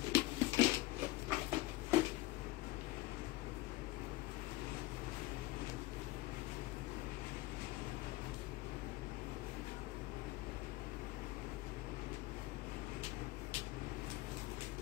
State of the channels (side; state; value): right; quieter; 18.3 dB